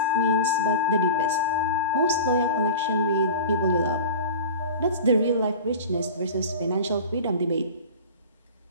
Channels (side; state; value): both; inverted; correlation -0.34